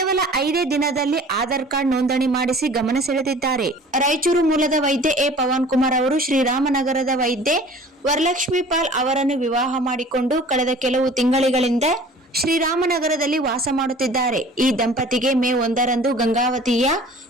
5 ದಿನದಲ್ಲಿ ಆಧಾರ್ ಕಾರ್ಡ್ ನೋಂದಣಿ ಮಾಡಿಸಿ ಗಮನ ಸೆಳೆದಿದ್ದಾರೆ. ರಾಯಚೂರು ಮೂಲದ ವೈದ್ಯ ಎ ಪವನ್ ಕುಮಾರ್ ಅವರು ಶ್ರೀರಾಮನಗರದ ವೈದ್ಯೆ ವರಲಕ್ಷ್ಮಿ ಪಾಲ್ ಅವರನ್ನು ವಿವಾಹ ಮಾಡಿಕೊಂಡು ಕಳೆದ ಕೆಲವು ತಿಂಗಳಿಂದ ಶ್ರೀರಾಮನಗರದಲ್ಲಿ ವಾಸ ಮಾಡುತ್ತಿದ್ದಾರೆ. ಈ ದಂಪತಿಗೆ ಮೇ 1ರಂದು ಗಂಗಾವತಿಯ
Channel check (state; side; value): normal; both; correlation 0.46